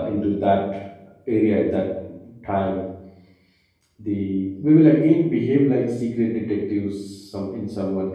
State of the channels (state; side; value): identical; both; correlation 1.00